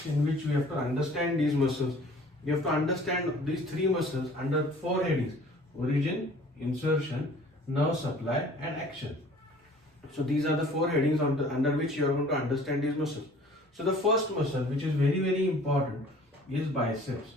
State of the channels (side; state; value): both; normal; correlation 0.50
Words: in which we have to understand these muscles. You have to understand these three muscles under four headings: origin, insertion, nerve supply and action. So these are the four headings under which you are going to understand these muscles. So the first muscle, which is very important, is biceps.